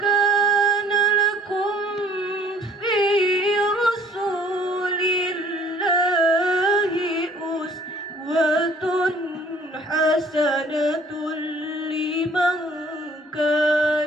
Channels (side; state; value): both; normal; correlation 0.56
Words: lakum fi rasulillahi uswatun hasanatun liman